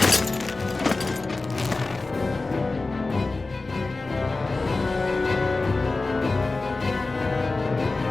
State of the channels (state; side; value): quieter; right; 3.5 dB